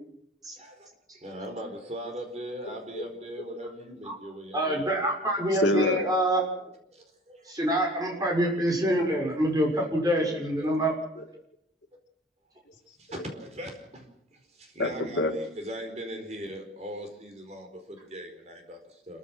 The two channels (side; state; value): both; normal; correlation 0.45